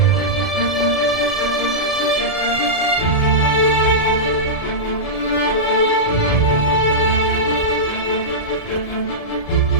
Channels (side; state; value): left; late; 1.7 ms